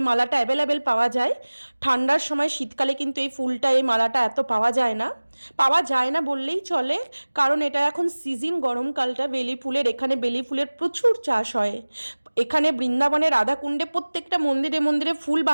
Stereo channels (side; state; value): both; inverted; correlation -1.00